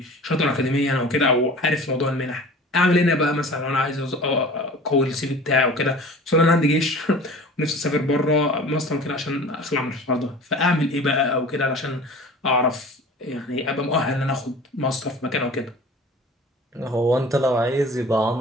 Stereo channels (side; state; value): both; normal; correlation 0.42